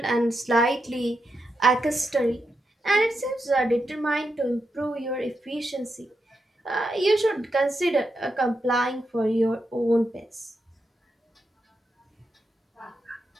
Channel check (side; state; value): both; normal; correlation 0.85